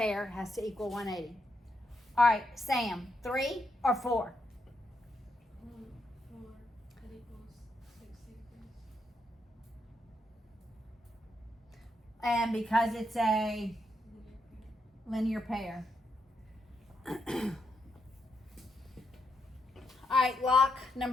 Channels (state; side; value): normal; both; correlation 0.80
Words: has to equal 180. All right, Sam, 3 or 4? 4. That equals 60 degrees. And because it's a Linear pair. linear pair. All right, lock